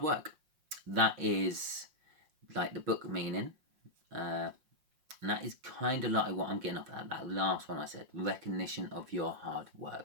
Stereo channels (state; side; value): late; left; 5.6 ms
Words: work. That is like the book meaning. And that is kind of like what I'm getting off at that last one I said, recognition of your hard